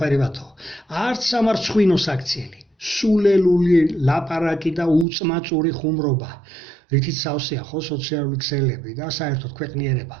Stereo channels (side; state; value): left; drops out; at 5.1 s